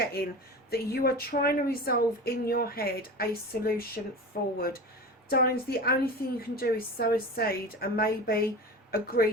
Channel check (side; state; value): both; normal; correlation 0.31